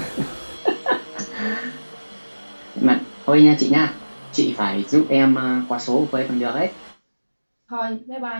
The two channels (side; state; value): both; inverted; correlation -1.00